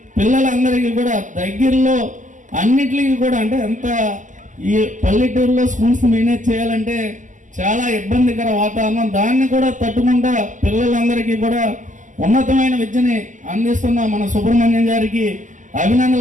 పిల్లలందరికీ కూడా దగ్గరలో అన్నిటికీ కూడా, అంటే అంత ఈ పల్లెటూరులో స్కూల్స్ మేనేజ్ చేయాలంటే చాలా ఇబ్బందికర వాతావరణం. దాన్ని కూడా తట్టుకుంటా పిల్లలందరికీ కూడా ఉన్నతమైన విద్యని అందిస్తున్న మన సుబ్రహ్మణ్యం గారికి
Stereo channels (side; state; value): left; late; 0.37 ms